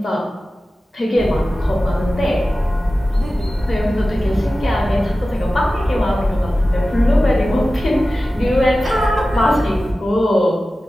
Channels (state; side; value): normal; both; correlation 0.95